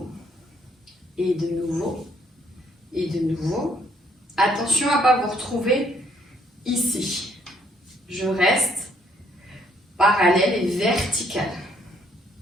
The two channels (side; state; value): both; normal; correlation 0.68